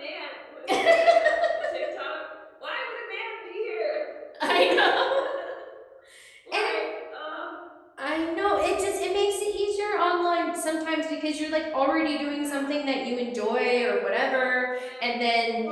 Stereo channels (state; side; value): identical; both; correlation 1.00